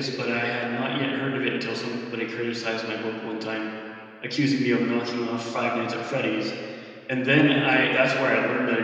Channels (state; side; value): identical; both; correlation 1.00